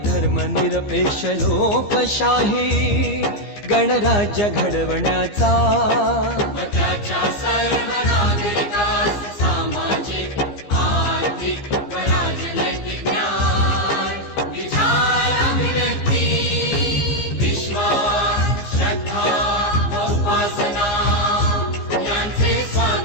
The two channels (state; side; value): late; right; 15 ms